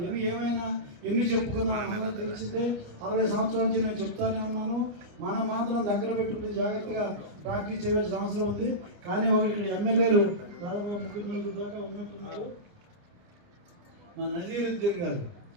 ఏమైనా ఎన్ని చెప్పుకున్నా అందరూ తెలిసిందే. 60 సంవత్సరాల నుంచి నేను చెప్తానే ఉన్నాను. మనం మాత్రం దగ్గర పెట్టుకుని జాగ్రత్తగా ప్రాక్టీస్ చేయవలసిన అవసరం ఉంది. కానీ ఒకటి ఇక్కడ ఎమ్మెల్యేలు దాదాపుగా 3 దాకా ఉన్నట్టున్నారు. మా నజీరుద్దీన్ గారు,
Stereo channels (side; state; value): left; late; 29 ms